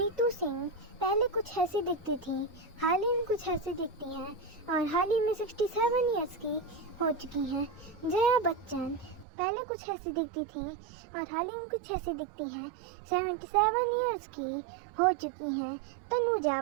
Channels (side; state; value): left; drops out; at 9.2 s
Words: सिंह पहले कुछ ऐसी दिखती थी, हाल ही में कुछ ऐसी दिखती हैं और हाल ही में 67 इयर्स की हो चुकी हैं। जया बच्चन पहले कुछ ऐसी दिखती थी और हाल ही में कुछ ऐसी दिखती है, 77 इयर्स की हो चुकी हैं। तनुजा